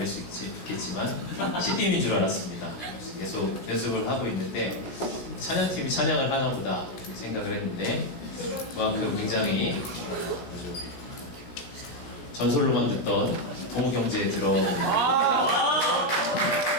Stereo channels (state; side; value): late; right; 17 ms